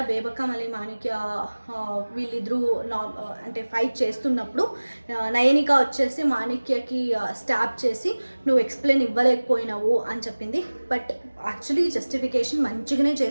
బేబక్క మళ్ళీ మాణిక్య వీళ్ళిద్దరూ అంటే ఫైట్ చేస్తున్నప్పుడు నయనిక వచ్చేసి మాణిక్యకి స్టాప్ చేసి నువ్వు ఎక్స్ప్లెయిన్ ఇవ్వలేకపోయినావు అని చెప్పింది. బట్ యాక్చువల్లీ జస్టిఫికేషన్ మంచిగానే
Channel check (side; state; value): both; inverted; correlation -1.00